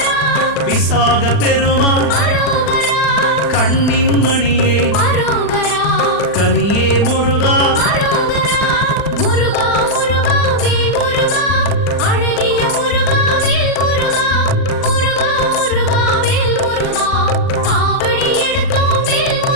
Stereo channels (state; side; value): late; right; 40 ms